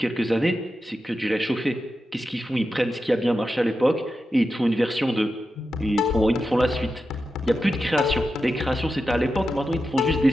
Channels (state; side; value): normal; both; correlation 0.90